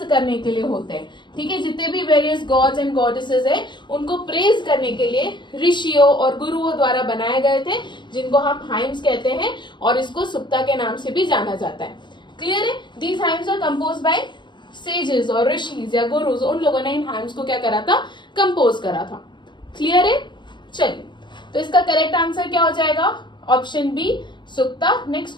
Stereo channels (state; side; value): late; right; 0.22 ms